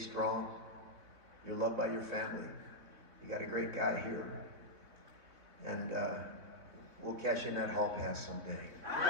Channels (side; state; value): left; late; 3.6 ms